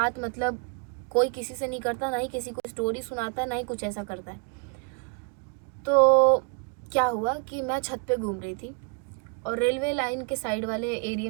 मतलब कोई किसी से नहीं करता, ना ही किसी को स्टोरी सुनाता है, ना ही कुछ ऐसा करता है। तो क्या हुआ कि मैं छत पे घूम रही थी और रेलवे लाइन के साइड वाले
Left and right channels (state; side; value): quieter; left; 36.8 dB